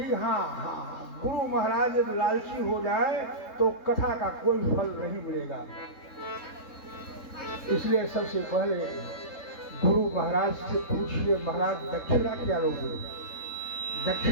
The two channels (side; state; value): right; late; 3.7 ms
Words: हाँ गुरु महाराज यदि लालची हो जाए तो कथा का कोई फल नहीं मिलेगा। इसलिए सबसे पहले गुरु महाराज से पूछिए, महाराज दक्षिणा क्या लोगे?